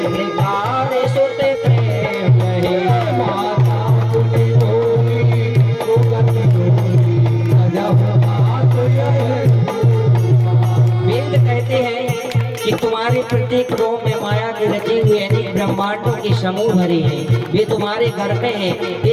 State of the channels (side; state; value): both; identical; correlation 1.00